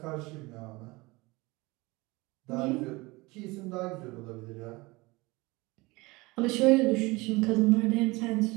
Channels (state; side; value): quieter; left; 23.1 dB